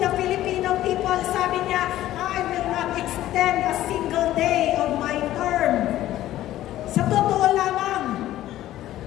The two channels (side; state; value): right; quieter; 14.0 dB